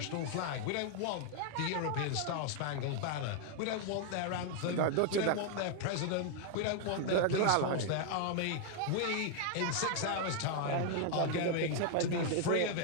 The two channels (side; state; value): both; different; correlation 0.00